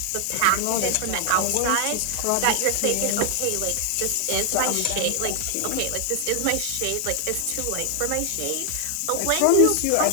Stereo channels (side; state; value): both; different; correlation 0.00